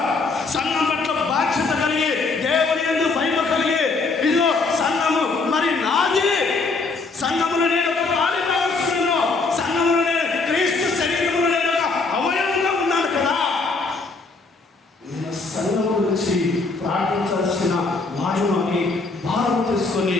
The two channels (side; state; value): right; quieter; 3.9 dB